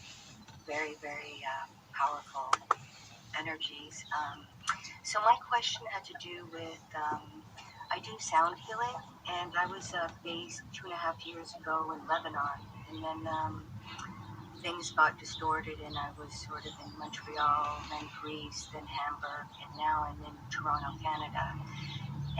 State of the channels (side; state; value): both; identical; correlation 1.00